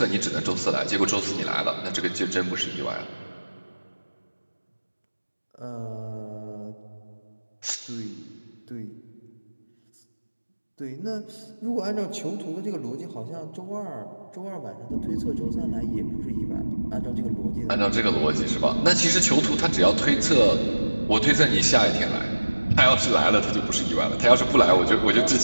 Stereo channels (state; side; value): inverted; both; correlation -1.00